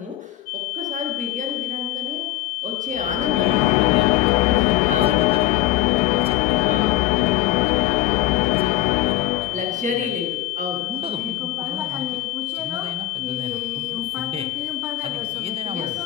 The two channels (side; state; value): right; quieter; 14.5 dB